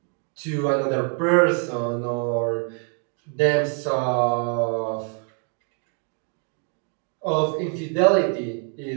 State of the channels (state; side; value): quieter; left; 39.4 dB